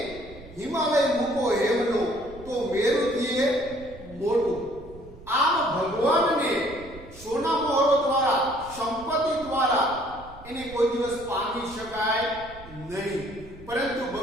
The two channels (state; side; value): noise; right; rumble, 18 dB below the sound